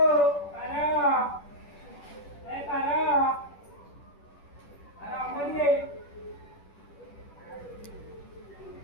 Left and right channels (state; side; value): late; right; 10 ms